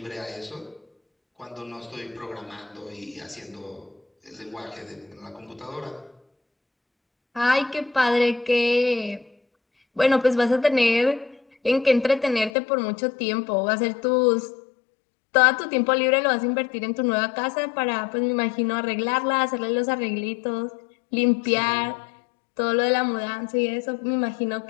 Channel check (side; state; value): right; drops out; at 12.5 s